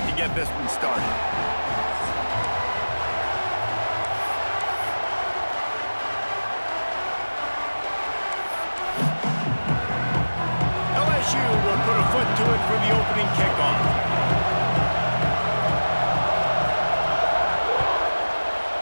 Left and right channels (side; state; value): both; inverted; correlation -1.00